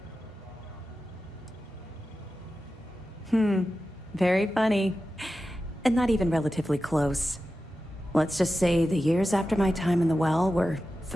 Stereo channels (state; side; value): normal; both; correlation 0.93